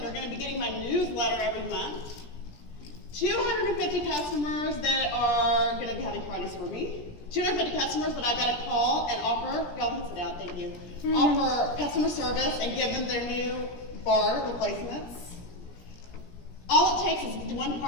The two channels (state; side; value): late; right; 17 ms